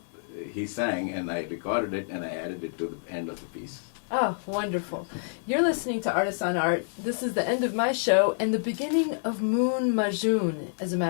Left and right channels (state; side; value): silent; right; digital silence